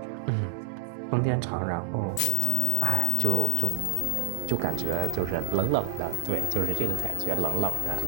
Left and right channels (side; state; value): both; different; correlation 0.00